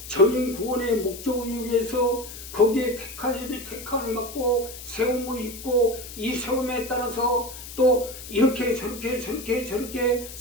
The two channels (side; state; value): left; noise; hiss, 13 dB below the sound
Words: 전인 구원의 목적을 위해서 거기에 택함을 받고 세움을 입고, 이 세움에 따라서 또 이렇게 저렇게